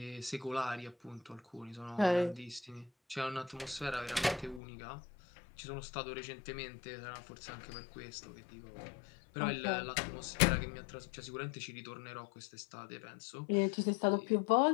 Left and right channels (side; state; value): right; drops out; at 4.6 s